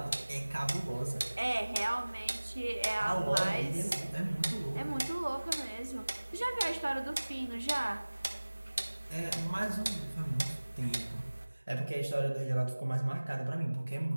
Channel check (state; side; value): inverted; both; correlation -1.00